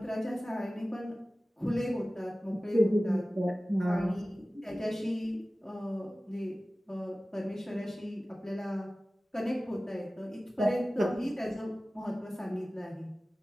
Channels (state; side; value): normal; both; correlation 0.97